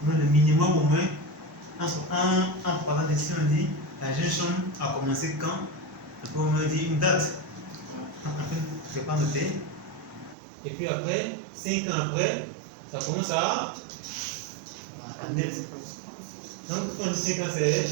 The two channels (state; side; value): drops out; left; at 10.4 s